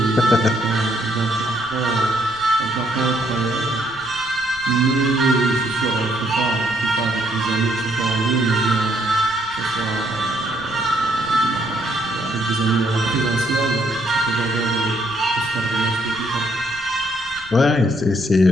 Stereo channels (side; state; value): left; noise; rumble, 21 dB below the sound